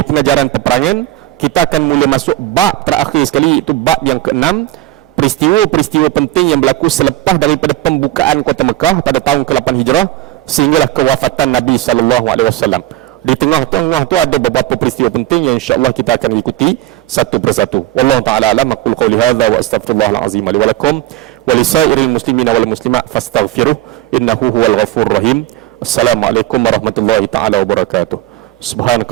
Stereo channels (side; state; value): left; quieter; 15.3 dB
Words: pengajaran peperangan, kita akan mula masuk bab terakhir sekali, iaitu bab yang ke-6, peristiwa-peristiwa penting yang berlaku selepas daripada pembukaan kota Mekah pada tahun ke-8 Hijrah sehinggalah kewafatan Nabi SAW. Di tengah-tengah tu ada beberapa peristiwa penting yang insya-Allah kita akan ikuti satu persatu. Wallahu taala alam. Aqul qouli hadza wa astaghfirullahal azim li wa lakum wa lisairil muslimina wal muslimat fastaghfiruh innahu huwal ghafurur rahim. Assalamualaikum warahmatullahi taala wabarakatuh.